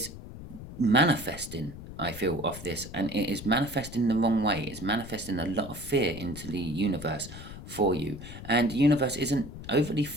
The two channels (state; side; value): noise; left; rumble, 13 dB below the sound